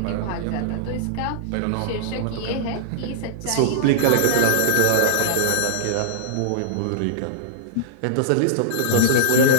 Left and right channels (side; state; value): both; different; correlation -0.02